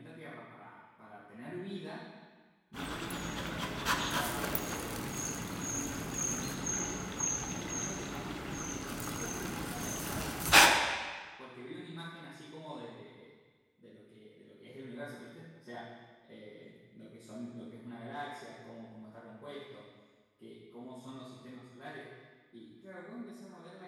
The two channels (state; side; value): identical; both; correlation 1.00